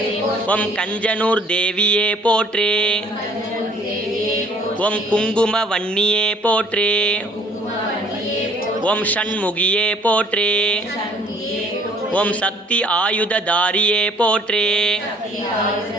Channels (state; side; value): normal; both; correlation 0.57